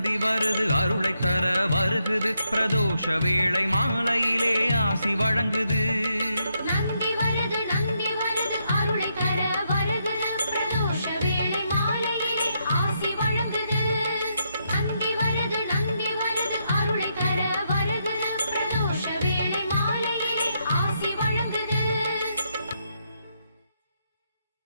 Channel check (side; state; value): both; inverted; correlation -0.79